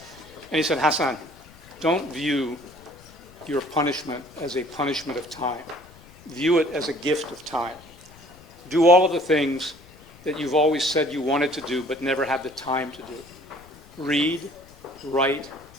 And he said, Hassan, don't view your punishment as a punishment of time. View it as a gift of time. Do all of the things that you've always said you wanted to do but never had the time to do. Read, write,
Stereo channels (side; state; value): left; noise; rumble, 23 dB below the sound